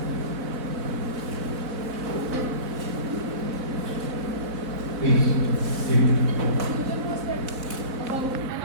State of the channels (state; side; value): late; left; 4.0 ms